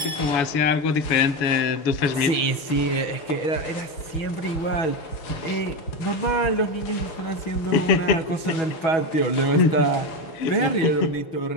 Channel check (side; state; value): right; late; 6.2 ms